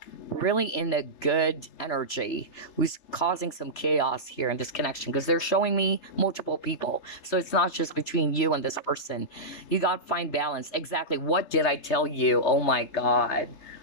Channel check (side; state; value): right; late; 3.3 ms